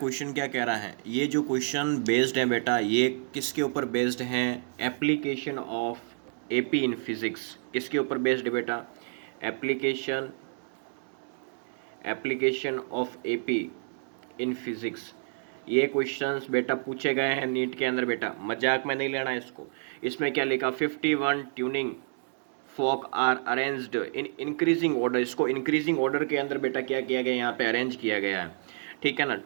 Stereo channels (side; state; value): left; silent; digital silence